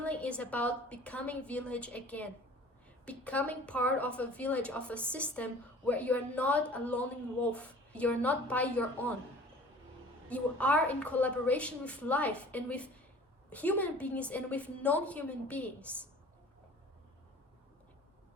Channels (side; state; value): both; normal; correlation 0.46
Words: is about becoming village again. Becoming part of a village, of a system where you're not a lone wolf. You're not by your own. You are in collaboration with life and with human beings and with non-human beings.